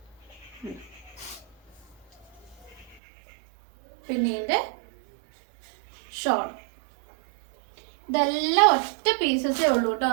പിന്നെ ഇതിൻ്റെ ഷോൾ. ഇതെല്ലാം ഒറ്റ പീസസേ ഉള്ളൂ കേട്ടോ.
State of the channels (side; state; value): left; drops out; at 3.0 s